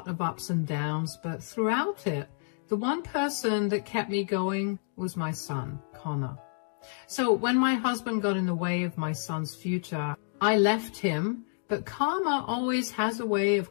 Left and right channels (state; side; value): silent; right; digital silence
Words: of ups and downs, but throughout it, the one person that kept me going was my son, Connor. So when my husband got in the way of my son's future, I left him, but karma always has a way